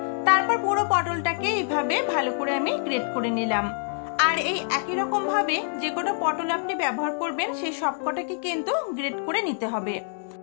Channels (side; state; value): right; silent; 61 dB below the other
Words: তারপর পুরো পটলটাকে এইভাবে ভালো করে আমি গ্রেট করে নিলাম। আর এই একই রকম ভাবে যে কটা পটল আপনি ব্যবহার করবেন সেই সবকটাকে কিন্তু গ্রেট করে নিতে হবে।